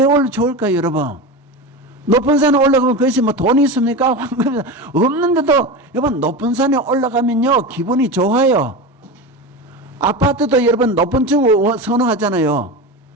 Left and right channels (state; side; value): normal; both; correlation 0.24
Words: 좋을까요 여러분? 높은 산에 올라가면 그것이 뭐 돈이 있습니까? 황금이 없는데도 여러분 높은 산에 올라가면요 기분이 좋아요. 아파트도 여러분 높은 층 선호하잖아요.